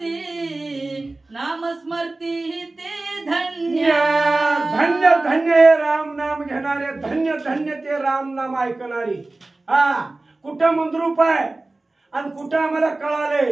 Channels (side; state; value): left; quieter; 3.1 dB